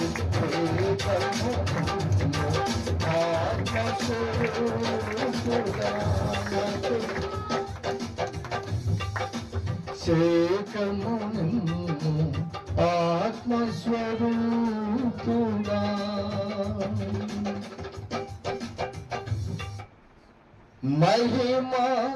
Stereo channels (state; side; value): identical; both; correlation 1.00